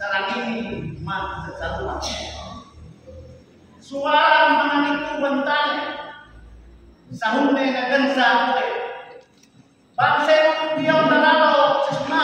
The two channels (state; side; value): identical; both; correlation 1.00